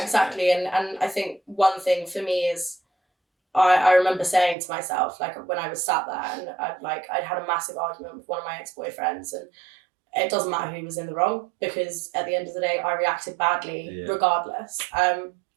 exactly. And I think one thing for me is, I remember saying to myself, like when I was sat there and I'd had a massive argument with one of my ex-boyfriends, and it doesn't matter who was in the wrong, because at the end of the day, I reacted badly regardless.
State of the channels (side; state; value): left; drops out; at 4.5 s